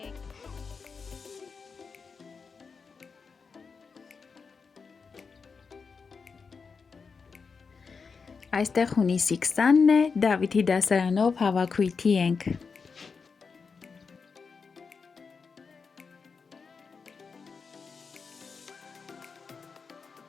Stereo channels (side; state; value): right; quieter; 5.2 dB